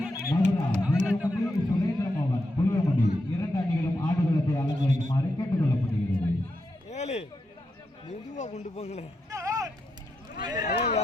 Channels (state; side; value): normal; both; correlation 0.85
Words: மதுரா புளியங்குடி சுரேந்திரமோகன் புளியங்குடி 2 அணிகளும் ஆடுகளத்தை அலங்கரிக்குமாறு கேட்டுக்கொள்ளப்படுகிறது. ஏழு மெதுவா கொண்டு போங்களே